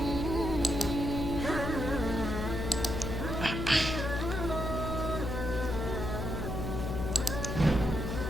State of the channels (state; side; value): noise; left; hum, 3 dB below the sound